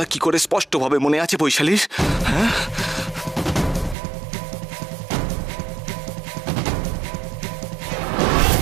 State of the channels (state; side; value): drops out; left; at 4.0 s